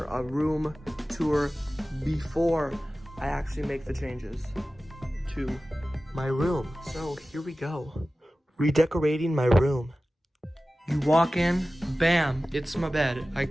a room tour before I actually make the changes to my room. So here we go. Redecorating my room. You walk in, bam, it's my bed. I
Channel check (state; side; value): normal; both; correlation 0.96